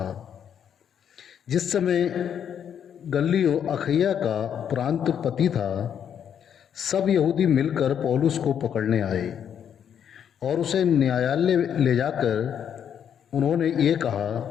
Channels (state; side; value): quieter; right; 8.6 dB